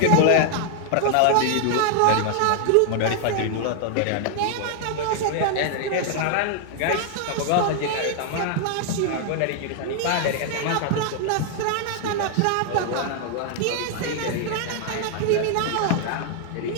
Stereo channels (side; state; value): both; different; correlation 0.00